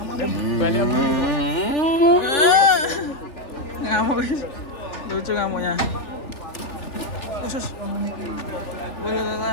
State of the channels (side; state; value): right; late; 3.4 ms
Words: Ngamuk, guys. Lucu ngamuknya. Khusus.